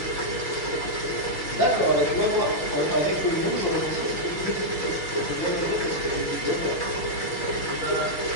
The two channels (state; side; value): late; right; 6.2 ms